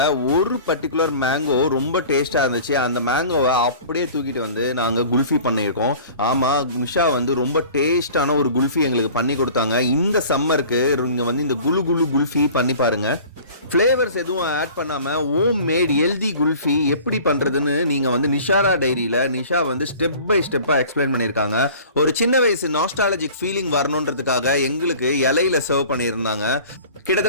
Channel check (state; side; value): inverted; both; correlation -0.45